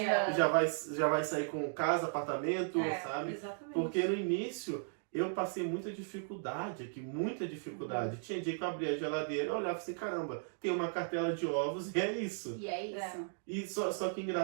já vai sair com casa, apartamento, sabe? Exatamente. Porque no início eu passei muita dificuldade aqui, muita dificuldade. Tinha dia que eu abria a geladeira e olhava assim, caramba, tem uma cartela de ovos e é isso. E é isso. E só que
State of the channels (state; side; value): silent; left; digital silence